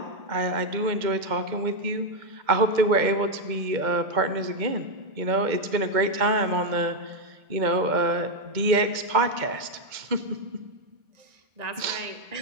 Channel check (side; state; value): left; late; 2.1 ms